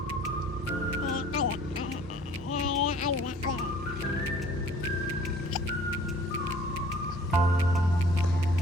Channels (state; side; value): normal; both; correlation 0.53